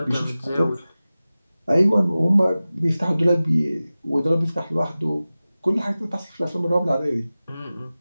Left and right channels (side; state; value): both; inverted; correlation -0.96